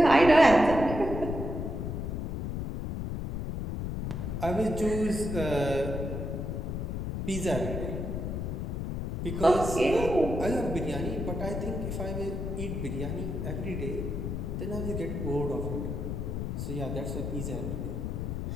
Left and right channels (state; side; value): noise; left; rumble, 3 dB below the sound